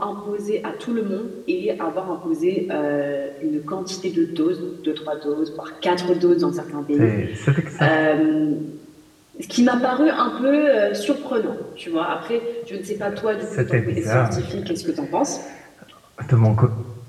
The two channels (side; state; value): both; identical; correlation 1.00